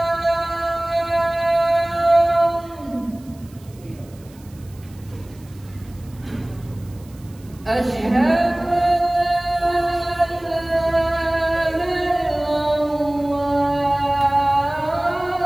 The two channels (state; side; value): noise; right; hiss, 27 dB below the sound